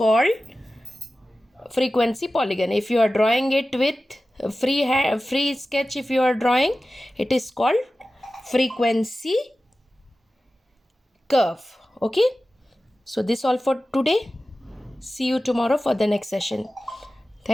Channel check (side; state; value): both; normal; correlation 0.95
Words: frequency polygon. If you are drawing it with free sketch, if you are drawing, it is called frequency curve. Okay, so this all for today. See you tomorrow for the next session.